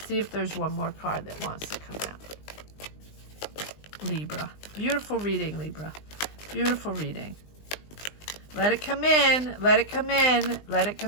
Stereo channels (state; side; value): late; right; 20 ms